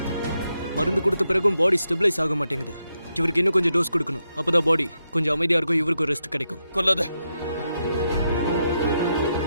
மருந்து கொடுத்த பிறகும் பாடி ஸ்டெபிலைஸ் ஆக மாட்டேங்குது. இவருக்கு இன்னும் கொஞ்சம் டோஸ் கொடுக்கணும். அப்பதான் பாடி கொஞ்சம் அமைதியா இருக்கும், இவருக்கு ரெஸ்ட் கிடைக்கும். கொல்லாத,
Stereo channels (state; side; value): inverted; both; correlation -0.84